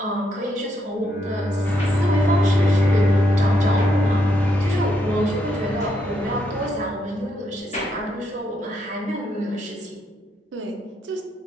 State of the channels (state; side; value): normal; both; correlation 0.77